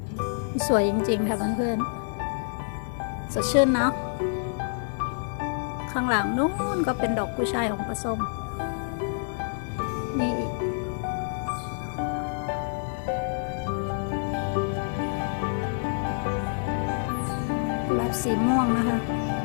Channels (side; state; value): right; silent; digital silence